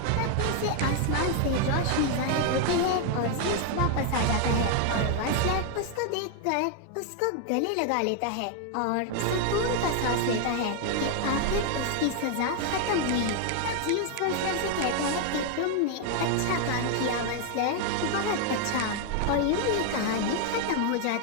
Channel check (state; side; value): different; both; correlation 0.00